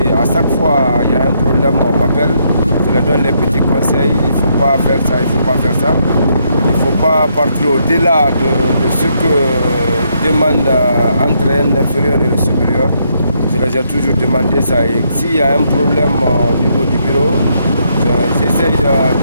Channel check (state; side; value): inverted; both; correlation -0.75